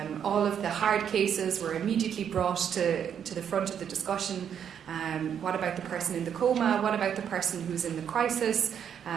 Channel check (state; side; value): quieter; left; 8.4 dB